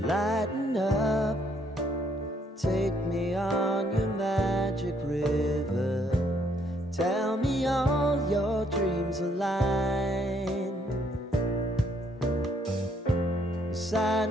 Lighten up, take me on your magic river. Tell me all your dreams align.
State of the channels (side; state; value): both; normal; correlation 0.69